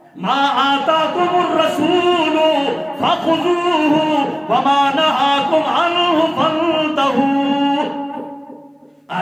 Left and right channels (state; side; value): identical; both; correlation 1.00